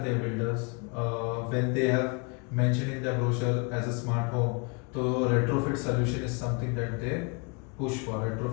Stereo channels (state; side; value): quieter; right; 33.8 dB